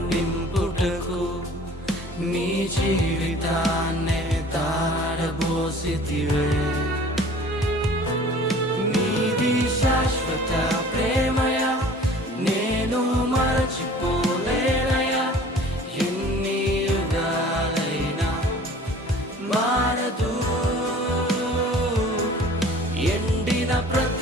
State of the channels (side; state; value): both; normal; correlation 0.48